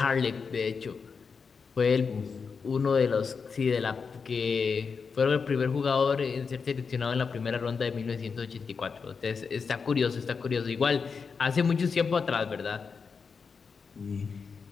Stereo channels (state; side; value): quieter; right; 5.4 dB